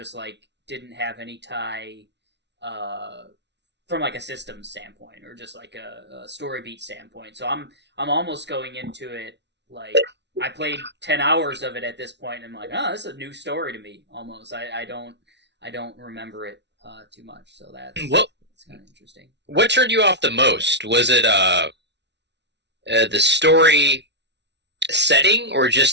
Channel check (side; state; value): left; late; 0.50 ms